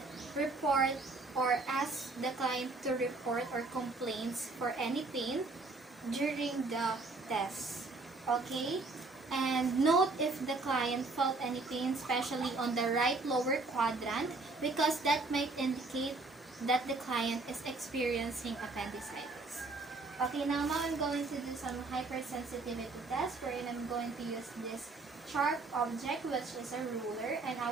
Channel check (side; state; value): left; quieter; 3.5 dB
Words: report or ask the client to report or complaints for any pain during the test. Okay? And note if the client felt any pain, especially on the right lower quadrant, because that might indicate that the client is experiencing appendicitis. Okay, now I'm going to do some hypersensitivity test wherein I'm going to use this sharp object, which is a ruler, and I